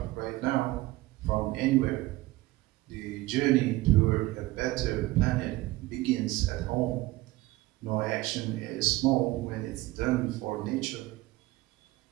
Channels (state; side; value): quieter; left; 18.8 dB